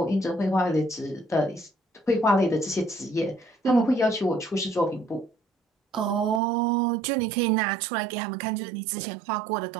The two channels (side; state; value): left; drops out; at 6.4 s